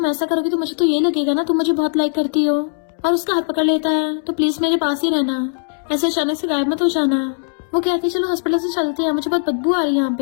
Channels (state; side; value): silent; right; 66 dB below the other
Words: ऐसा करोगी तो मुझे तो ये लगेगा ना तुम मुझे बहुत लाइक करती हो, और उसका हाथ पकड़ लेता है तो प्लीज मेरे पास ही रहना, ऐसे अचानक से गायब मत हो जाना। वो कहती है चलो हॉस्पिटल से चलते हैं, मुझे बहुत बदबू आ रही है यहाँ